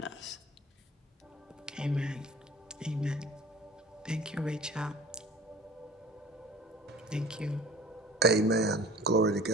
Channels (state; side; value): normal; both; correlation 0.46